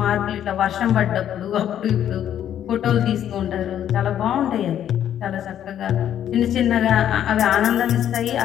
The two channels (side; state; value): right; quieter; 10.4 dB